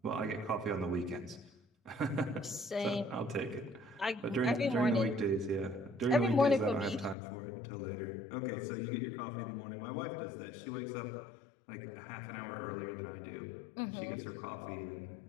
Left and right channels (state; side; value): drops out; right; at 7.2 s